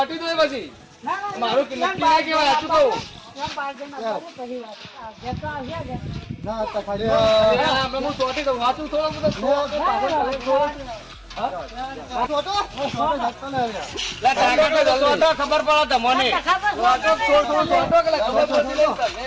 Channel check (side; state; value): both; identical; correlation 1.00